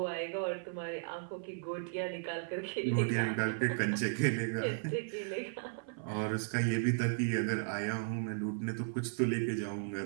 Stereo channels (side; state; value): left; silent; 54 dB below the other